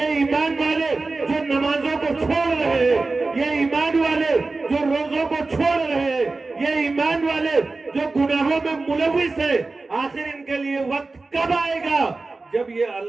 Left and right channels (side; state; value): left; quieter; 3.6 dB